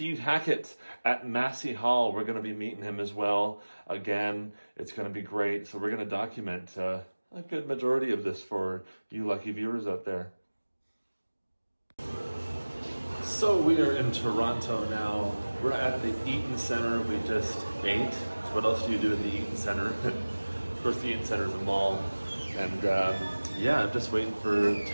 Hackett at Massey Hall. We're going to be meeting him as well. Again, it's going to be great. So we're going to document a good majority of this for you lucky viewers out there. So we are in Toronto now. We're at the Eaton Centre. We just ate. So what else do you do at the Eaton Centre? Of course, the Eaton Centre is a mall. And I'm just waiting for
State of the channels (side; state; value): both; inverted; correlation -1.00